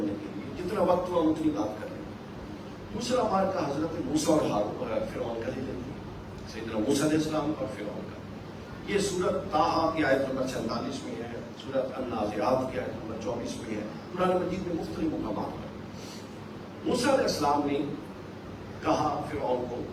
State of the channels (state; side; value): identical; both; correlation 1.00